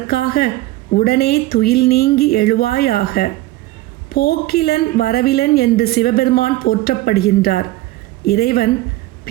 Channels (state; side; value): quieter; left; 17.3 dB